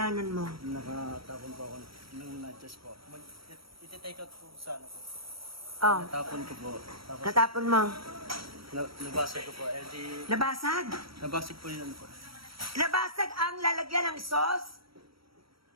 mo? Nakatapon po ako ng nachos po. Iti-take out po sa ano po. Oh, Natapon ko po. Tapos natapon mo. nabasag ko po. Eh di, Nabasag. nabasag po yun ano po. Nabasag ang lalagyan ng sauce.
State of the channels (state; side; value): late; left; 0.75 ms